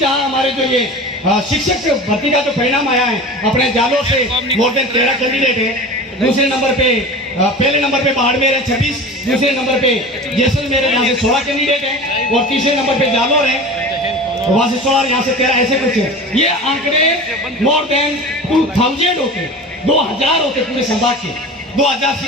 हमारे जो ये शिक्षक भर्ती का जो परिणाम आया है, अपने जालोर से मोर देन 13 कैंडिडेट है। दूसरे नंबर पे पहले नंबर पे बाड़मेर है 26, दूसरे नंबर पे जैसलमेर है, यहाँ से 16 कैंडिडेट है, और तीसरे नंबर पे जालोर है, वहां से 16, यहाँ से 13, ऐसे कुछ है। ये आंकड़े मोर देन 2000 होते, 2000 होते पूरे संभाग के, 2000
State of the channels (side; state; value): both; normal; correlation 0.34